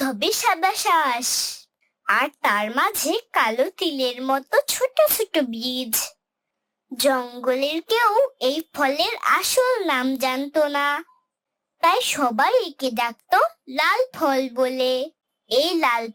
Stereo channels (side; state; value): both; identical; correlation 1.00